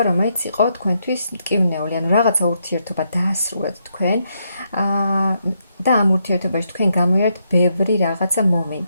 რომელიც იყო თქვენთვის მტკივნეული, ანუ რაღაცა ურთიერთობა დაასრულეთ თქვენ და ამ ურთიერთობაში თქვენ გამოიარეთ ბევრი რაღაცა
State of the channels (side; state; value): both; inverted; correlation -0.79